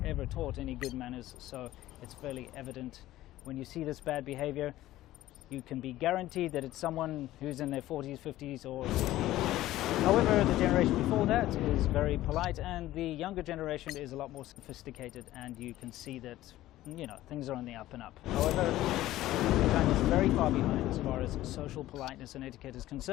ever taught any good manners. So it's fairly evident when you see this bad behavior, you can be guaranteed that it's someone who's in their 40s, 50s, or 60s. However, the generation before that is very polite, and the younger generation is a lot more sophisticated, and you can see that things are on the up and up. However, China is very far behind as far as social politeness and etiquette is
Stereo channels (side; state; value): right; quieter; 15.2 dB